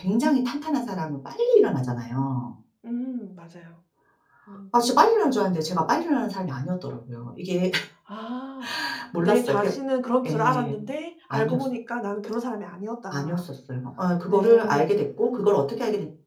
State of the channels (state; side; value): identical; both; correlation 1.00